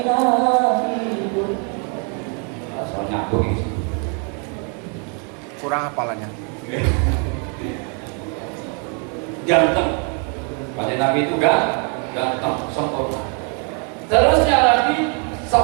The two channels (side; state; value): left; quieter; 38.0 dB